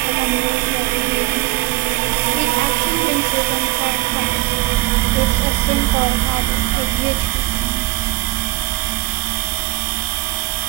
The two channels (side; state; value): left; quieter; 20.7 dB